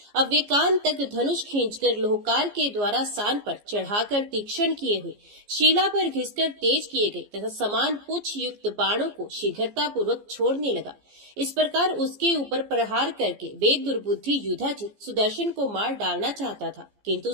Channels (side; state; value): left; late; 14 ms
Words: अब वे कान तक धनुष खींचकर लोहकार के द्वारा सान पर चढ़ाकर तीक्ष्ण किए हुए शिला पर घिसकर तेज किए गए तथा समान पुच्छ युक्त बाणों को शीघ्रता पूर्वक छोड़ने लगा। इस प्रकार उसके ऊपर प्रहार करके वे दुर्बुद्धि युधाजित सुदर्शन को मार डालना चाहता था, किंतु